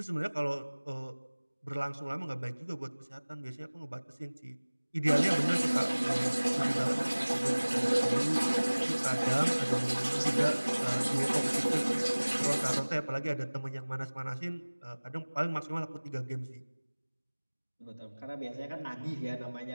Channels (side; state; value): both; inverted; correlation -1.00